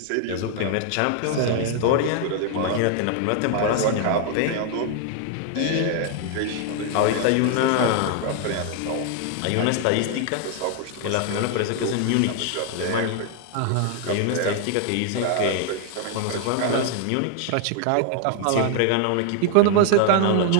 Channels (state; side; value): different; both; correlation 0.00